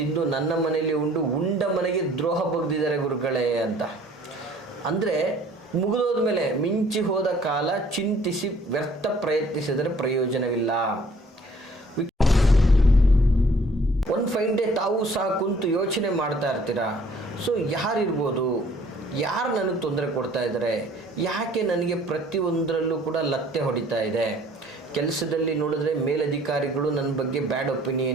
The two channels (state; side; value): normal; both; correlation 0.56